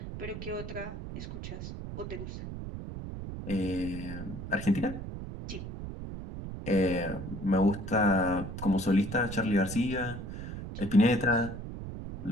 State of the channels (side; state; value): right; noise; rumble, 8 dB below the sound